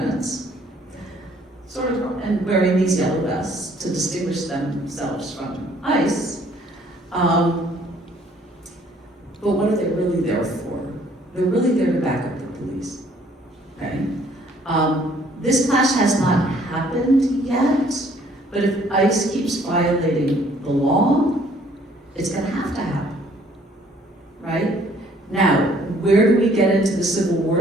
sort of, and wearing these yellow vests to distinguish themselves from ICE. But what are they really there for? They're really there to back up the police, okay? This clash has not happened yet, but if ICE keeps violating the law, it's gonna have to happen, right? Now, where do we get into the Civil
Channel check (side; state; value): both; normal; correlation 0.61